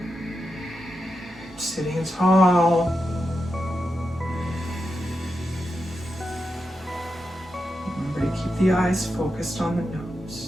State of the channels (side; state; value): both; normal; correlation 0.88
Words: Sitting tall. Remember to keep the eyes focused on the